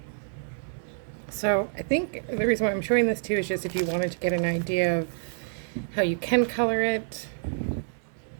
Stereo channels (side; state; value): left; silent; 60 dB below the other